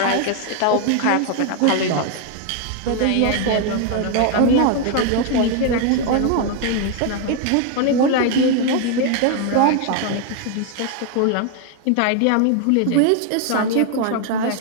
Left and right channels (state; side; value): different; both; correlation 0.00